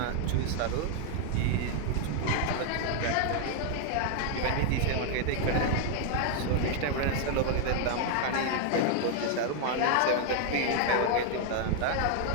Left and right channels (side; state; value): both; different; correlation 0.00